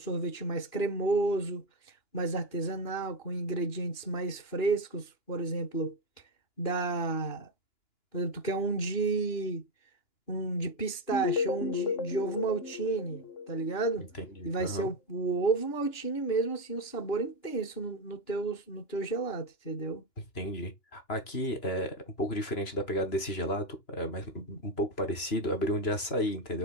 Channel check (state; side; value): late; right; 2.9 ms